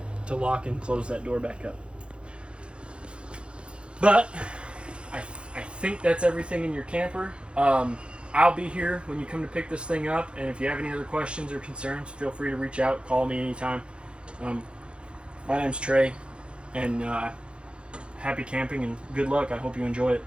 to lock and close that door back up. But I think that's everything in your camper. I'll be here when you come to pick this thing up, and if you have any other questions or concerns, feel free to reach out, call me anytime. My name's Trey, and happy camping and good luck. I hope you enjoy it.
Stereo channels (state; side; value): late; left; 0.057 ms